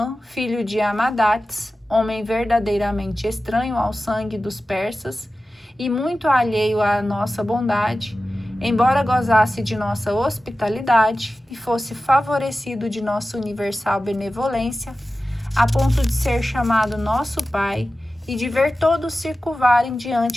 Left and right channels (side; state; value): both; normal; correlation 0.95